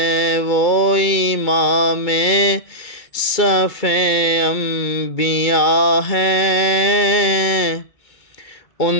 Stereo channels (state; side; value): late; right; 2.2 ms